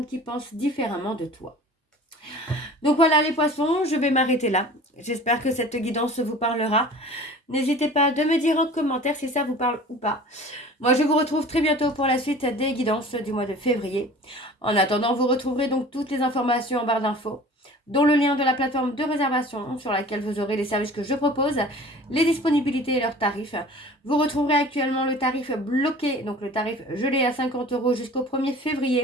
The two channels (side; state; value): both; normal; correlation 0.43